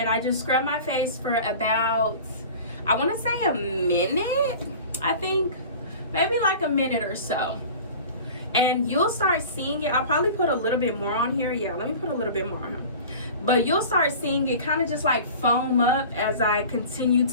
I just scrub my face for about, I want to say a minute, I think. Maybe like a minute or so. And you'll start seeing it. I'll probably put a little bit more on here. Yeah, let me put a little bit more on here. But you'll start seeing it kind of just like foam up as I continue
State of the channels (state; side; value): inverted; both; correlation -0.39